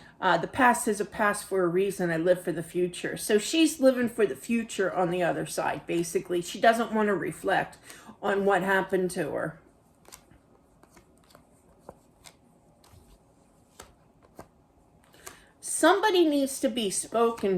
past is a past for a reason. I live for the future. So she's living for the future on the other side, basically. She doesn't want to reflect on what happened to her. Somebody needs to be spoken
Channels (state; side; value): identical; both; correlation 1.00